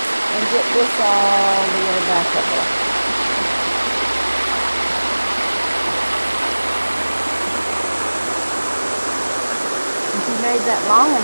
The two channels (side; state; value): both; inverted; correlation -1.00